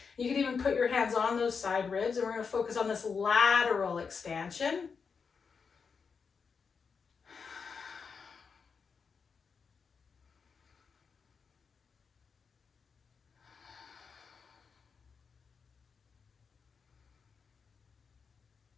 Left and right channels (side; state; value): right; quieter; 5.6 dB